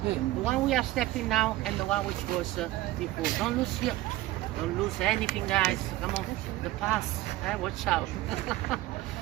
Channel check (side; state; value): left; quieter; 16.8 dB